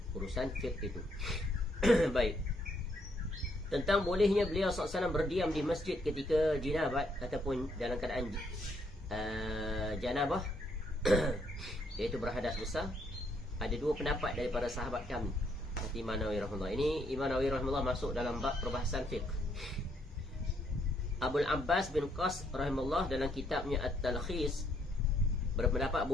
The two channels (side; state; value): both; normal; correlation 0.72